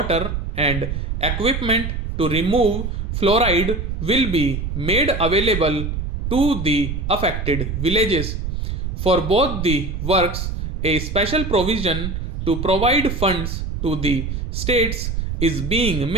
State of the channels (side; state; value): right; noise; rumble, 3 dB below the sound